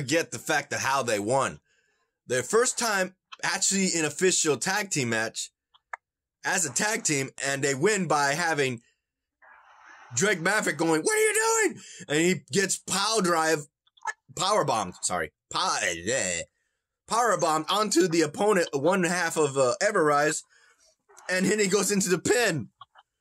the fact of how they won. Their first time actually in official tag team match as a tag team, and they win by having Drake Maverick going, "What are you doing?" And he gets power bombed onto the opponent, one half of Everrise, and then he goes into the pin.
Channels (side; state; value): both; identical; correlation 1.00